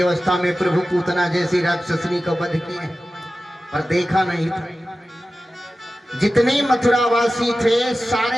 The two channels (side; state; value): both; normal; correlation 0.94